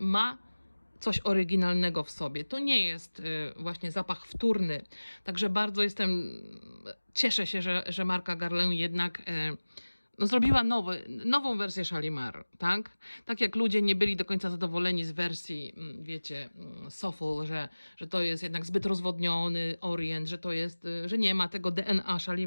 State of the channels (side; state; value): both; inverted; correlation -1.00